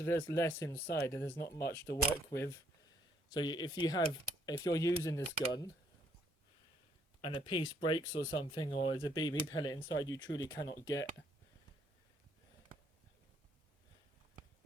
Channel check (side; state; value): both; normal; correlation 0.69